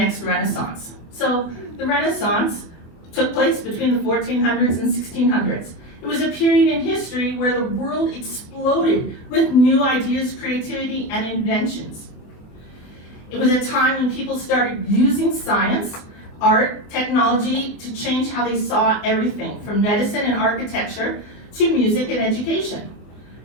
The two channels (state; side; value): late; right; 24 ms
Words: renaissance. So the Renaissance took place between the 1400s and 1600s. It was a period in history where the world exploded with new ideas, creativity, and inventions. It was a time when people started using science, art, technology to change how they saw everything, from medicine and architecture to music and education.